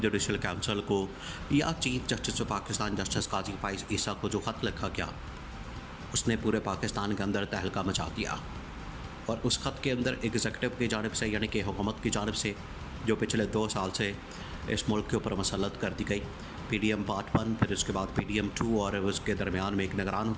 काउंसिल को या chief justice of Pakistan justice Qazi Faez Isa को जो ख़त लिखा गया, उसने पूरे पाकिस्तान के अंदर तहलका मचा दिया। और उस ख़त के अंदर एग्जीक्यूटिव की जानिब से यानी कि हुकूमत की जानिब से जो पिछले 2 साल से इस मुल्क के ऊपर मसलत कर दी गई, PDM पार्ट 1, फिर उसके बाद PDM 2 और उसके दरमियान में एक निगरान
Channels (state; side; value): identical; both; correlation 1.00